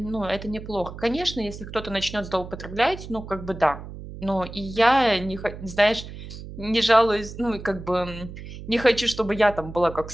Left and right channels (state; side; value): noise; right; hum, 12 dB below the sound